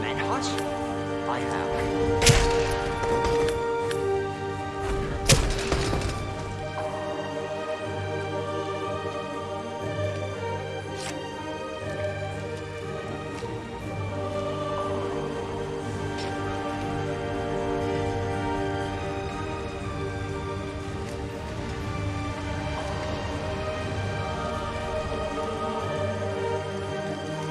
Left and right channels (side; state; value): both; identical; correlation 1.00